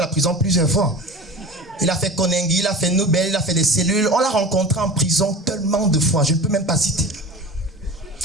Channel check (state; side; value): normal; both; correlation 0.35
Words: prison plusieurs fois. Il a fait Konengi, il a fait Nobel, il a fait des cellules. On l'a rencontré en prison tellement de fois, je ne peux même pas citer.